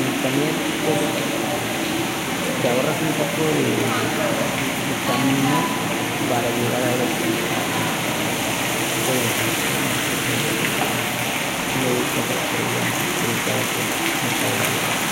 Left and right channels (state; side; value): identical; both; correlation 1.00